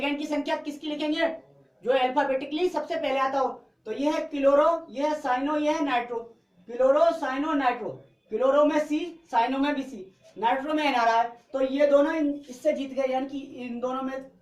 की संख्या किसकी लिखेंगे, जो अल्फाबेटिकली सबसे पहले आता हो। तो ये है क्लोरो, ये है साइनो, ये है nitro. Chloro, cyano, nitro. Chloro में सी, साइनो में भी सी, नाइट्रो में एन आ रहा है। तो ये दोनों इससे जीत गए, यानी कि इन दोनों में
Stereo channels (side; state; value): both; identical; correlation 1.00